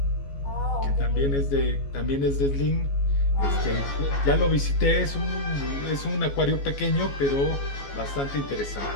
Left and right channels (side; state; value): right; late; 14 ms